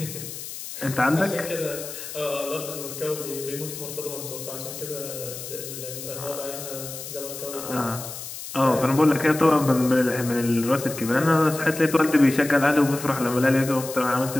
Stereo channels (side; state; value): left; noise; hiss, 10 dB below the sound